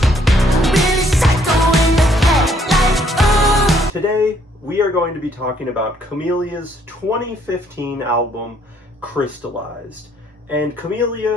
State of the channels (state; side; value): normal; both; correlation 0.67